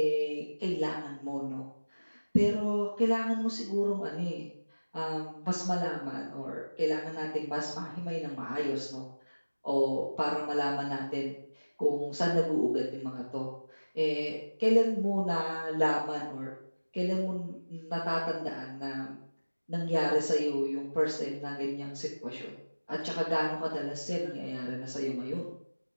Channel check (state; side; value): inverted; both; correlation -1.00